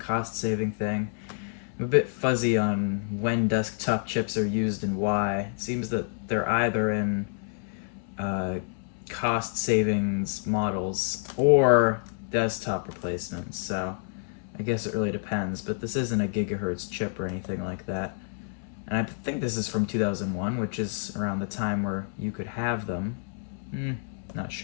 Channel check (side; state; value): right; silent; 59 dB below the other